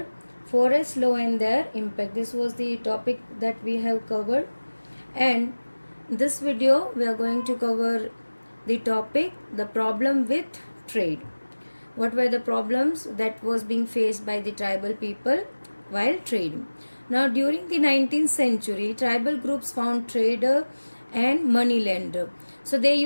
forest law and their impact. This was the topic that we have covered, and this video we are going to cover the topic the problem with trade. What were the problems that was being faced by the tribal people while trading? Now during the 19th century, tribal groups found trader and money lender. So they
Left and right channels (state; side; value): inverted; both; correlation -1.00